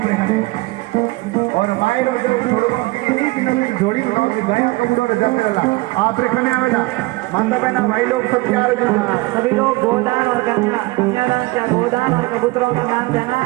और मायरो जो जोड़ी बनाओ कि गाय कमजोर जंगला आप रे खने आवेला माता बहना भाई लोग सब तैयार हो सभी लोग गोदान और कन्या कन्यादान क्या गोदान और कबूतरों का दान देना।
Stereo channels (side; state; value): left; quieter; 22.3 dB